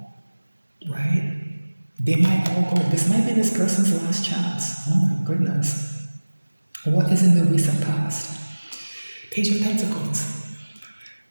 right? They might all go. This might be this person's last chance. Oh my goodness. What is in the recent past? Page of Pentacles.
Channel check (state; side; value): inverted; both; correlation -1.00